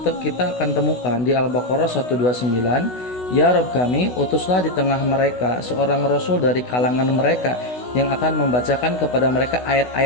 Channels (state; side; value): late; right; 16 ms